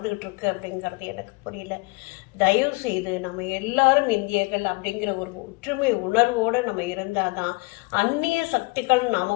இருக்கு அப்படிங்கிறது எனக்கு புரியல. தயவு செய்து நம்ம எல்லாரும் இந்தியர்கள் அப்படிங்கிற ஒரு ஒற்றுமை உணர்வோடு நம்ம இருந்தாதான் அந்நிய சக்திகள்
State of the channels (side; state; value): right; quieter; 26.5 dB